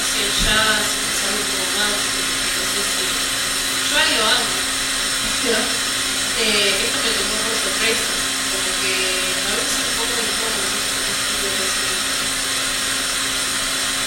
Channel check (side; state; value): both; identical; correlation 1.00